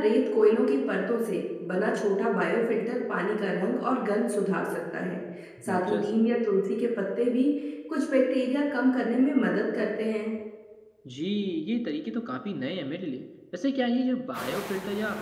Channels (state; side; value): identical; both; correlation 1.00